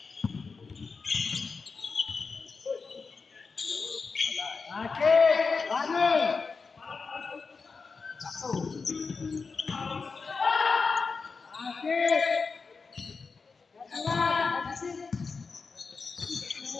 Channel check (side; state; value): right; quieter; 4.7 dB